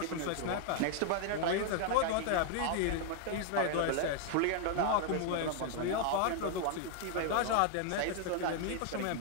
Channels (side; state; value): both; different; correlation 0.00